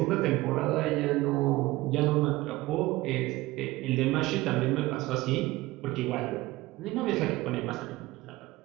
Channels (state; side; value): quieter; left; 18.9 dB